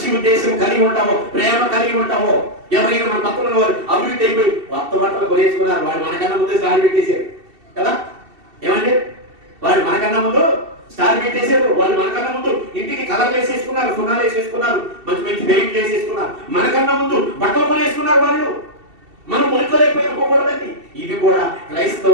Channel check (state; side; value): late; left; 2.7 ms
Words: ఉద్దేశం కలిగి ఉంటావో, ప్రేమ కలిగి ఉంటావో, ఎవరైనా మన పక్కన వారు అభివృద్ధి అయిపోయి కొత్త బట్టలు కొనేసుకున్నారు, వాడు మనకన్నా ముందు స్టార్ పెట్టేశారు కదా. ఏమండి, వాడు మనకన్నా ముందు స్టార్ పెట్టేశారు. వాళ్ళు మనకన్నా ముందు ఇంటికి కలర్లు వేసేసుకున్నారు, సున్నాలు వేసేసుకున్నారు, మంచి మంచి పెయింట్లు వేసేసుకున్నారు, మనకన్నా ముందు బట్టలు కొనేసుకున్నారు. వాళ్ళు మనం మునికోలేకపోయిపోకూడదండి. ఇది కూడా